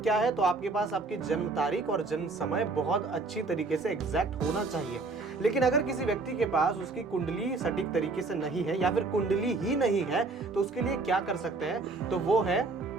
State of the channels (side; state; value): left; quieter; 3.7 dB